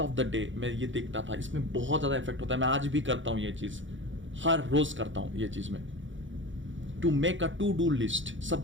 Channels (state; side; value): late; left; 0.56 ms